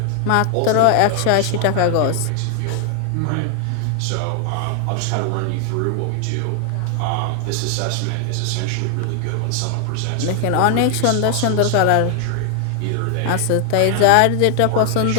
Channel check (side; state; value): both; different; correlation 0.00